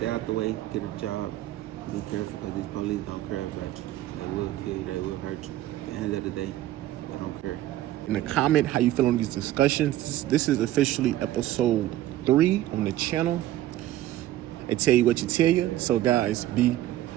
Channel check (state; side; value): quieter; left; 14.2 dB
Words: out the way, get a job, be careful because these police don't care about you. They will kill you, they will hurt you. At the end of the day, they don't care. In the comment how you feel on these discussions. This is officially episode 3 on the channel. I tell you what you tell you. So guys, be